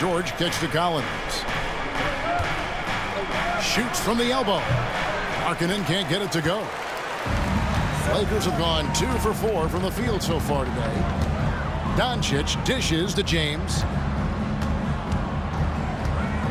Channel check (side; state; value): both; identical; correlation 1.00